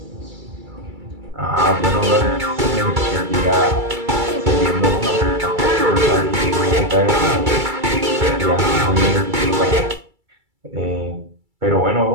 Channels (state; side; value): late; left; 2.3 ms